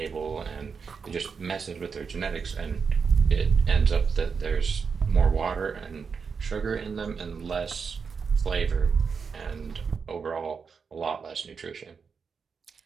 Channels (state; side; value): quieter; left; 5.7 dB